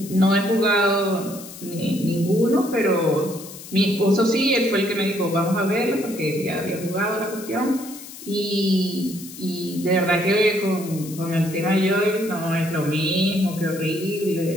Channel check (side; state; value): left; noise; hiss, 15 dB below the sound